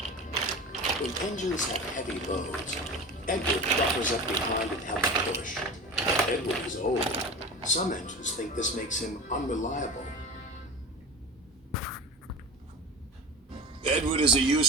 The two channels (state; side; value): normal; both; correlation 0.31